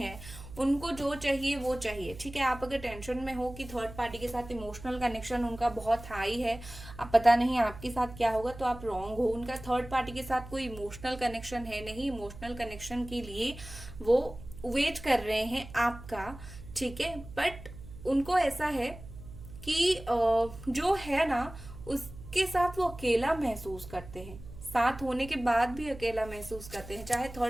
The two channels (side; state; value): right; noise; hum, 15 dB below the sound